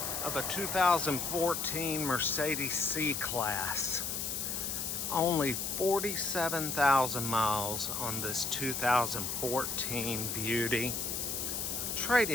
of a 2014 Mercedes C class. Only 47,000 miles on this 2014 beauty.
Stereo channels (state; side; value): noise; left; hiss, 2 dB below the sound